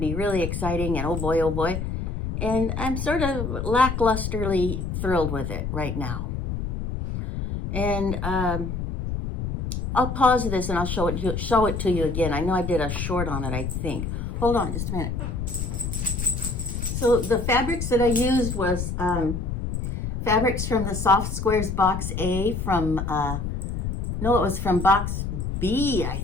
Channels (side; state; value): left; noise; rumble, 3 dB below the sound